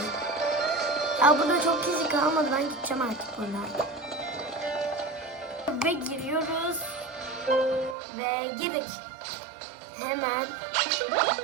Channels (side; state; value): left; drops out; at 8.0 s